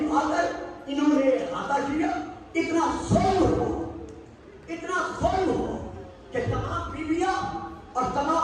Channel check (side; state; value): both; identical; correlation 1.00